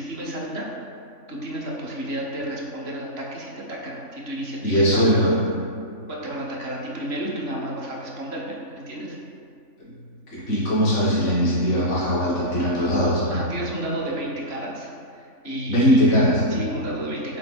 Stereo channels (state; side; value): late; right; 3.5 ms